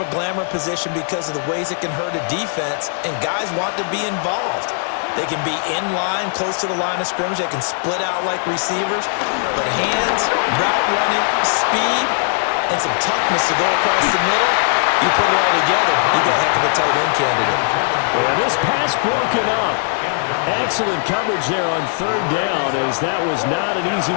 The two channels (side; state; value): right; silent; 66 dB below the other